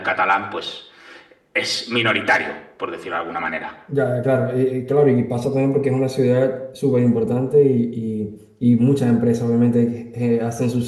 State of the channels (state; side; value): identical; both; correlation 1.00